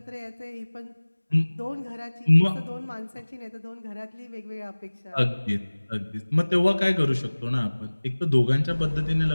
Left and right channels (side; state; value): both; inverted; correlation -1.00